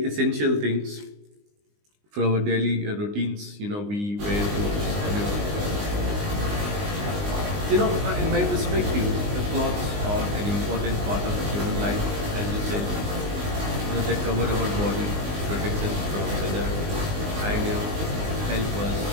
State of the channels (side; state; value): left; late; 20 ms